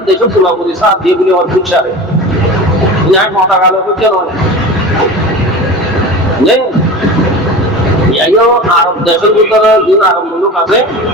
দেশে পুরাপুরি সার দিয়ে বলে আমার ফুটসারে ন্যায় মাথা গেল কেন আরব দেশের ভিতরে যে আরব মুলুক আছে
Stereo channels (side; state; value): both; normal; correlation 0.33